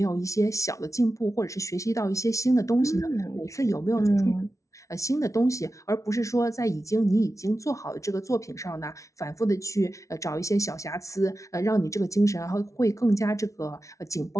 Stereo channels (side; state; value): right; late; 0.15 ms